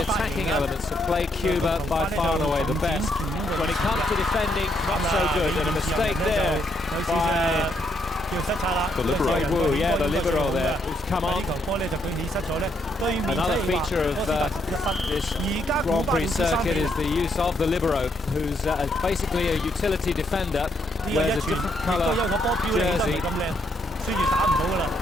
attacking elements of play, Cuba by far and away the best. When it comes to defending, not so good. And a mistake there by the libero. Wu, yeah, the libero there, who's come on. Another feature of this Grand Prix circuit is the use of the libero, who's basically a utility defender, wears a different colour jersey.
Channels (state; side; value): normal; both; correlation 0.75